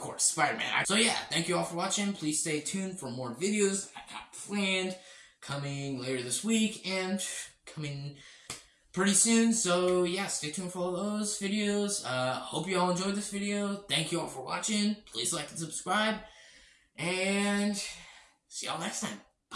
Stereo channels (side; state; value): both; identical; correlation 1.00